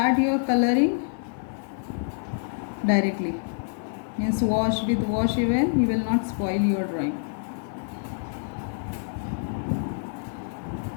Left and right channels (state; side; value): silent; right; 61 dB below the other